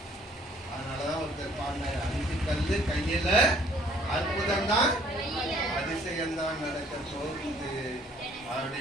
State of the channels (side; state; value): both; normal; correlation 0.59